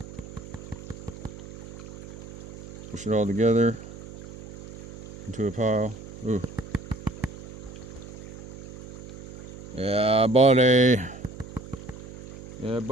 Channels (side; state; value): right; noise; hum, 14 dB below the sound